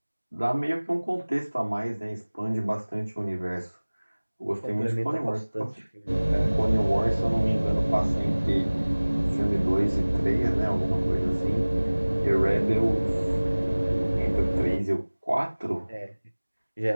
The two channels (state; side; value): inverted; both; correlation -1.00